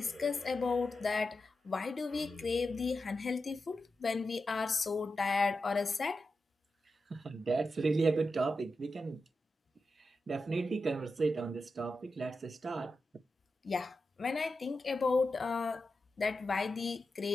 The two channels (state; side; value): normal; both; correlation 0.89